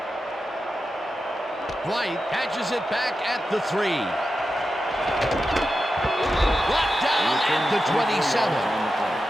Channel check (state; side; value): normal; both; correlation 0.91